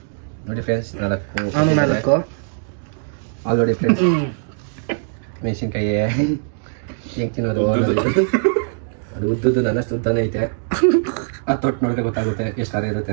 ನೋಡಿ ಫ್ರೆಂಡ್ಸ್, 4 ಆಲ್ರೆಡಿ ಫ್ರೆಂಡ್ಸ್. ಮೆಣಸಿನ್ಕಾಯಿ ಹೆಂಗ್ ತಿನ್ನೋದು? ಅದು ಉದ್ದದ್ದು ನನ್ನಷ್ಟು ಉದ್ದಾನೆ ಐತೆ. ಅದು ತೊಟ್ಟು ನೋಡಿದ್ರೆ ಗೊತ್ತಾಗುತ್ತೆ ಎಷ್ಟು ಖಾರ ಇರುತ್ತೆ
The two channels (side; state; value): left; silent; digital silence